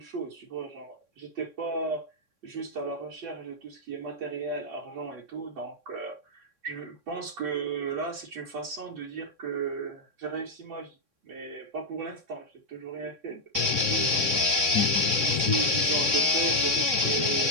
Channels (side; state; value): left; late; 3.6 ms